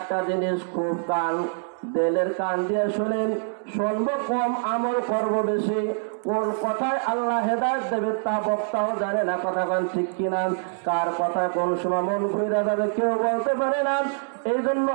জিনিস। খুব দিলের কান দিয়ে শুনেন। শুনবো কম, আমল করব বেশি। কোন কথায় আল্লাহ হেদায়েত দেবে তা বক্তাও জানে না। কথা বলেন ঠিক কিনা? কার কথায় কোন সময় মন ঘুরে যাবে কেউ বলতে পারে না। এই জন্য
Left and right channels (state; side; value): silent; left; digital silence